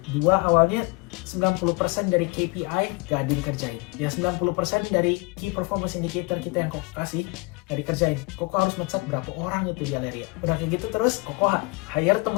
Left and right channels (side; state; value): right; quieter; 25.6 dB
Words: 2 awalnya 90% dari KPI gak dikerjain. Ya 90% dari key performance indicator kita yang Koko kasih gak dikerjain. Koko harus ngecat berapa orang itu di Aleria. Udah kayak gitu terus Koko hire